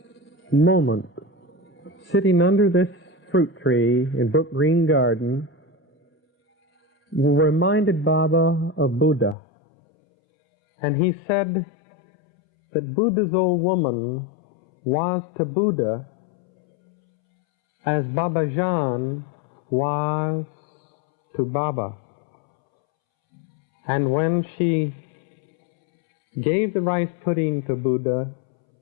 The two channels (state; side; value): drops out; right; at 9.3 s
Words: moment, sitting under this fruit tree in Brook Green Garden, reminded Baba of Buddha. And he said that Buddha's old woman was to Buddha as Babajan was to Baba. And when she gave the rice pudding to Buddha